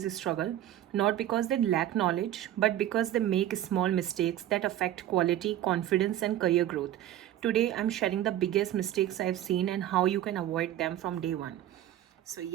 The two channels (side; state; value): left; quieter; 12.6 dB